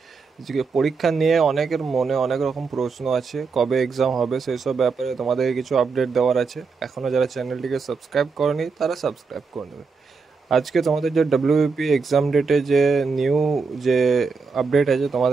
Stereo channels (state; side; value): quieter; left; 4.8 dB